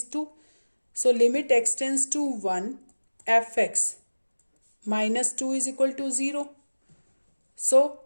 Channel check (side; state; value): both; inverted; correlation -1.00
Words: 2. So limit x tends to 1 fx minus 2 is equal to 0. So